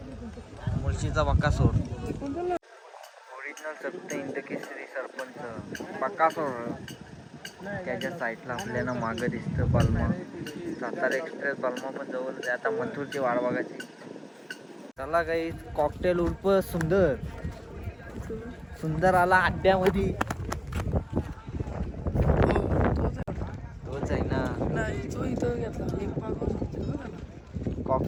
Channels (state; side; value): identical; both; correlation 1.00